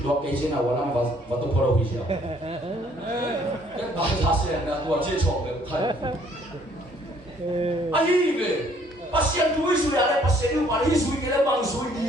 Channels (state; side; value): normal; both; correlation 0.62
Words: đồ cây trên nào làm và tụi phô đâu siêu cái bài giá sẽ là tụi chơi chọn được thay anh về bác sĩ túi suy à đấy bác sĩ nhưng mà đi suy cái đấy bằng suy